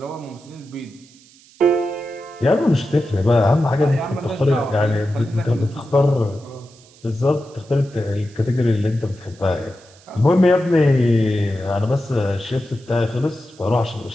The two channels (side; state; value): right; noise; hiss, 26 dB below the sound